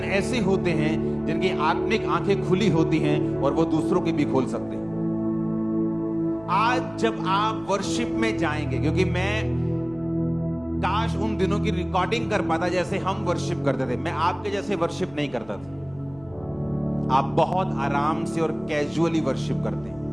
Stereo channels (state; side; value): noise; left; hum, 24 dB below the sound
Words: होते हैं जिनकी आत्मिक आंखें खुली होती हैं और वो दूसरों की भी खोल सकते हैं। आज जब आप वर्शिप में जाएंगे, क्योंकि मैं काश उन दिनों की रिकॉर्डिंग कर पाता जैसे हम वर्शिप करते थे। मैं आपके जैसे वर्शिप नहीं करता था। आप बहुत आराम से और कैजुअली वर्शिप करते हैं।